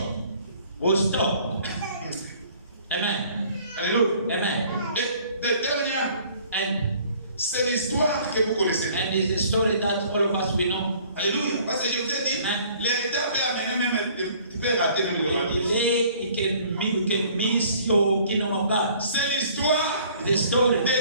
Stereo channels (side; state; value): both; inverted; correlation -0.55